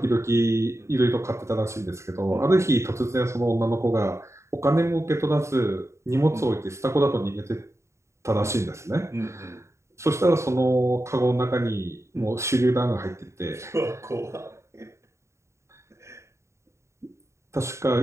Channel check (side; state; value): left; late; 0.14 ms